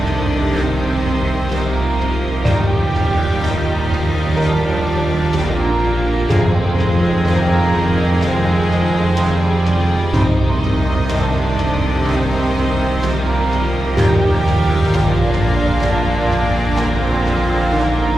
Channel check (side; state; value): right; noise; rumble, 13 dB below the sound